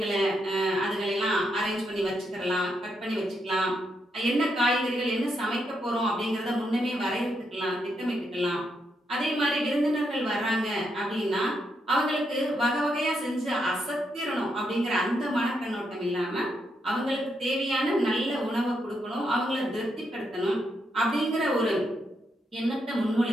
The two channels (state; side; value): normal; both; correlation 0.80